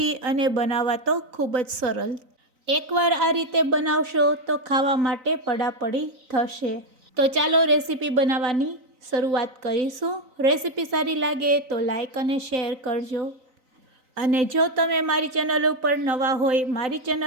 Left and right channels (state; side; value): late; left; 3.9 ms